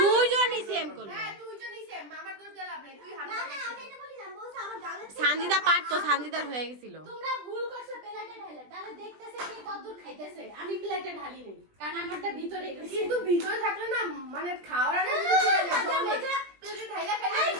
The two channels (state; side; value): late; left; 20 ms